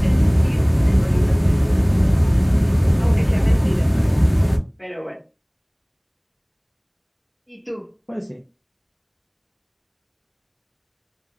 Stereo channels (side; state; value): both; identical; correlation 1.00